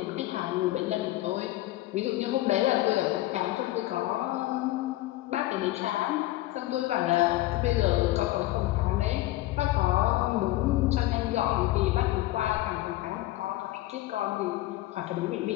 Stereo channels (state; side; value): quieter; right; 16.9 dB